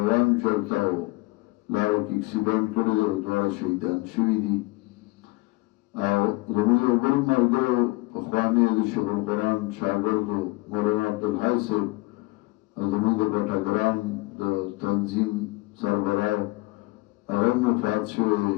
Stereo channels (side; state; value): right; quieter; 23.1 dB